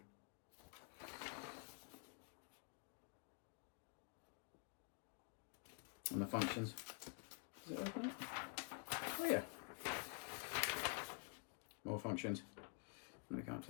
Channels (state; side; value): quieter; right; 38.6 dB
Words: And the functions. Does it open up? Oh yeah. More functions. Let me come up